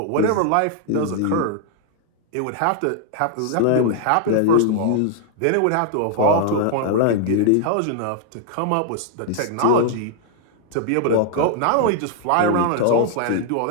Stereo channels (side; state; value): both; different; correlation 0.00